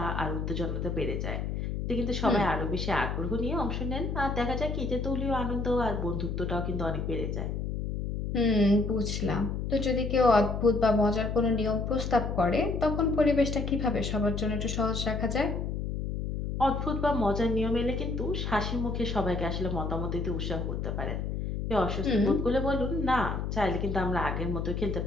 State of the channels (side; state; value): left; noise; hum, 3 dB below the sound